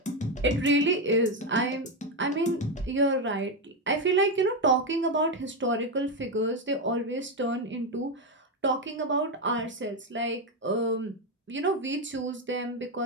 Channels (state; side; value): normal; both; correlation 0.09